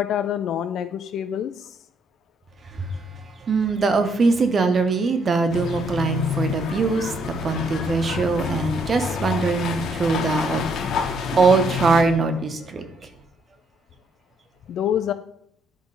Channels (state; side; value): normal; both; correlation 0.71